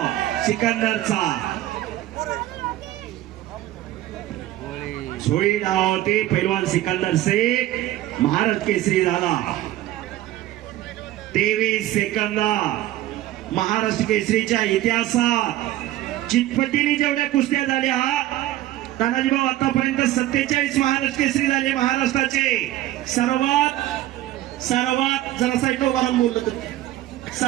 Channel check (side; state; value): left; quieter; 14.7 dB